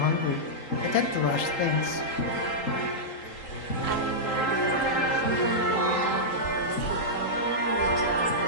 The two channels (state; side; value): late; right; 3.8 ms